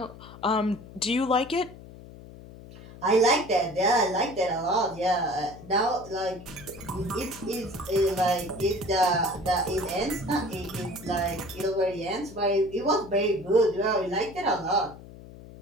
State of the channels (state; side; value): noise; left; hum, 17 dB below the sound